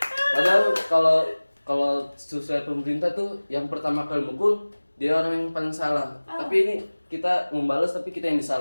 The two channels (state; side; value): inverted; both; correlation -1.00